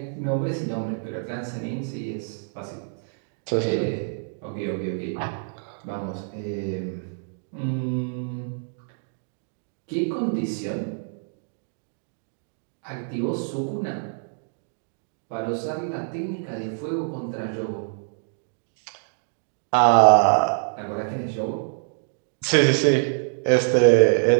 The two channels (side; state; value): left; silent; digital silence